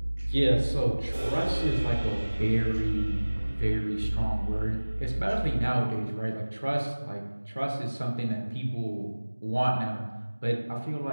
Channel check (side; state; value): both; inverted; correlation -1.00